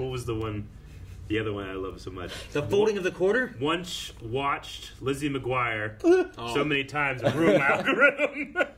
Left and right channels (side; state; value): both; identical; correlation 1.00